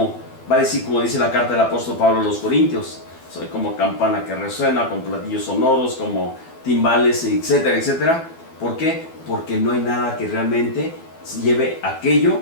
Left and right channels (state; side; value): late; right; 12 ms